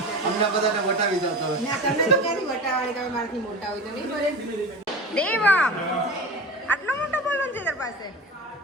અમને બધાને વટાવી જાવ તો હવે. ના તમને તો ક્યાંથી વટાવવાની, તમે મારાથી મોટા હોય તો નહીં બોલે. દેવા આટલો મોટો બોલન છે તાર પાસે.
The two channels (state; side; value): normal; both; correlation 0.30